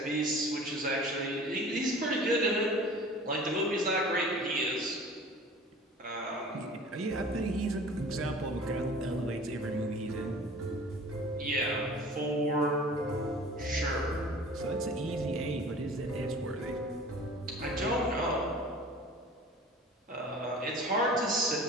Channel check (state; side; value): normal; both; correlation 0.43